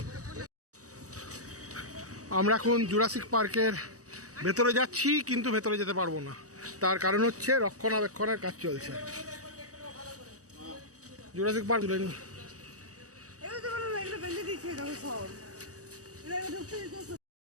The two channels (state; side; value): late; left; 0.66 ms